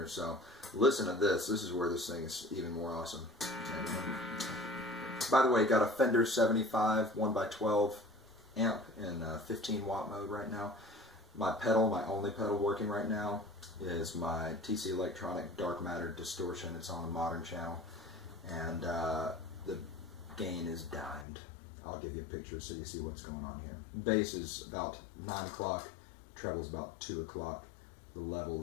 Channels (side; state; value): right; drops out; at 21.2 s